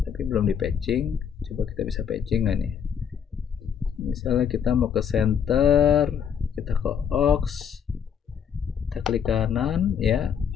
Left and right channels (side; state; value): right; quieter; 7.7 dB